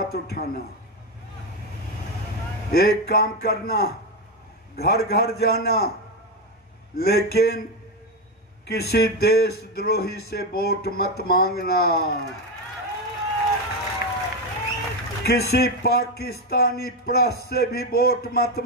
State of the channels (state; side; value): normal; both; correlation 0.11